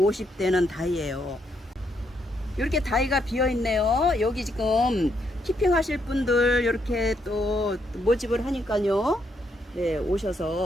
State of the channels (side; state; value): both; normal; correlation 0.76